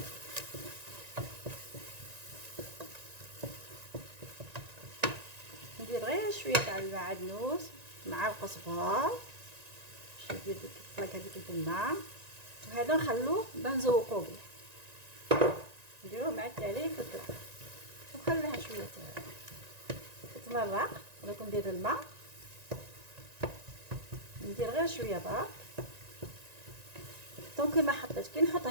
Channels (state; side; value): late; left; 1.9 ms